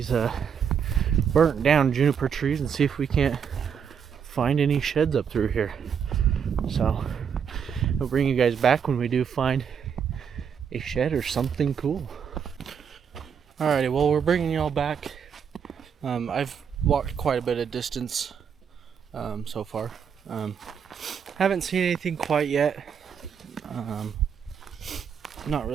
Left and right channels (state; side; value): quieter; left; 7.3 dB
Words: burnt down juniper trees and see if we can't find any sheds up through here. So I'll bring you guys back when we do find a shed or something cool. Alrighty, well, we're bringing y'all back. I've walked quite a bit of distance so far. Haven't seen anything quite yet. Not